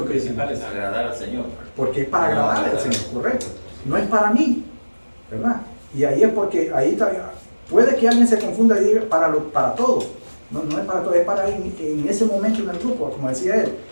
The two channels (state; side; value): inverted; both; correlation -1.00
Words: que principal es agradar al Señor. porque es para agradarle al Señor, correcto, no es para mí, ¿verdad? Y ahí es porque ahí está, puede que alguien se confunda y diga para todo, no es para todo, es para en ese momento en el grupo, como decía él.